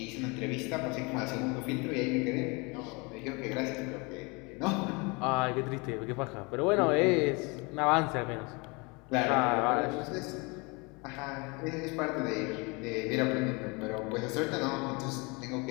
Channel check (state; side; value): quieter; right; 28.7 dB